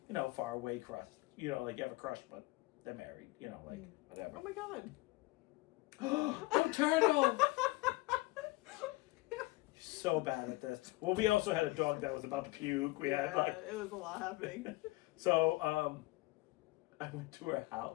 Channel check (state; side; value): quieter; right; 21.5 dB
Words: you know, far away crush. You know, like you have a crush, but they're married. You know, like whatever. Oh my god. Oh, turtle! So bad at this. Well, we also had a dog that was about to puke. We had like, it was a lot happening. so I went to her